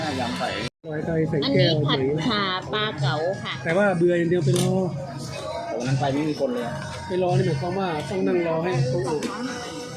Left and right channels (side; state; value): both; identical; correlation 1.00